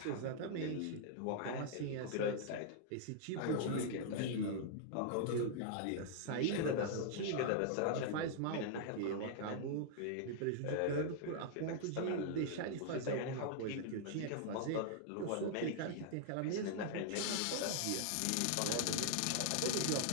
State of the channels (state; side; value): different; both; correlation -0.01